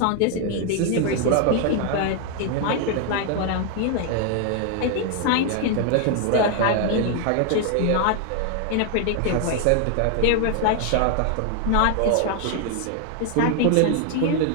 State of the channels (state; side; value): different; both; correlation 0.00